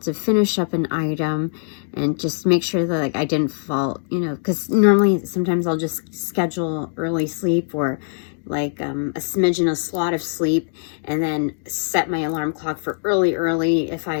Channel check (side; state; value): right; silent; digital silence